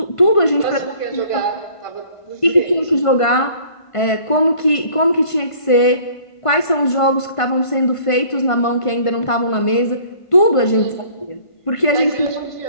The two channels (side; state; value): right; late; 1.5 ms